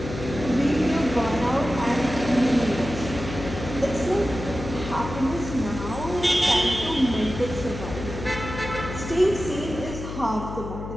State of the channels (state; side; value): noise; left; hum, 8 dB below the sound